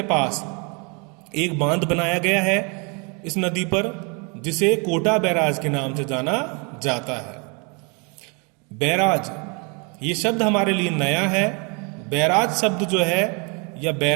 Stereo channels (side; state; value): left; quieter; 33.1 dB